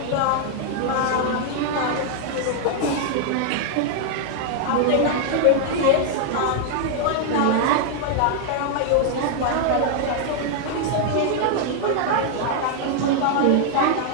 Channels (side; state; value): both; different; correlation 0.00